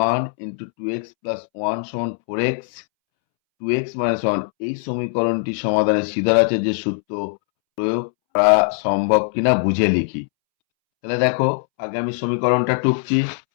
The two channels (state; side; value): silent; right; 65 dB below the other